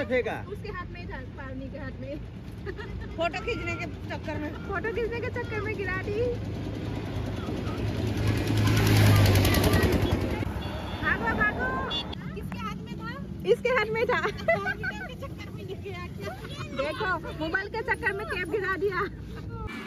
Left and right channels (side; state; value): both; identical; correlation 1.00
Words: फेंका उसके हाथ में था पानी के हाथ में फोटो खींचने के चक्कर में गिरा दी भागो किसके हाथ में था इसके हाथ में था चक्कर में गिरा देखो मोबाइल के चक्कर में कैप गिरा दिया